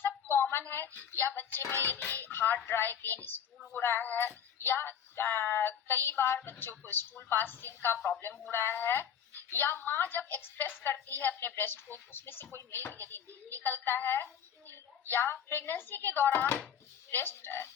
कॉमन है। या बच्चे में यदि हार्ड ड्राई पेन स्टूल हो रहा है, या कई बार बच्चों को स्टूल पासिंग का प्रॉब्लम हो रहा है, या माँ जब एक्सप्रेस करती है अपने ब्रेस्ट को उसमें से कोई मिल्क यदि नहीं निकलता है, या प्रेगनेंसी के दौरान ब्रेस्ट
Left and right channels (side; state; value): right; quieter; 8.5 dB